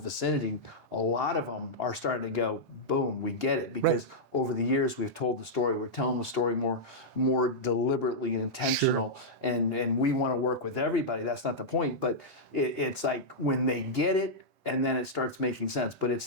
a lot of them are starting to go, boom, we get it, because over the years we've told the story, we're telling the story more deliberately and intentional, and we want to work with everybody. That's not the point, but it's like when they get it, and then it starts making sense. But it's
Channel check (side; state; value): both; normal; correlation -0.08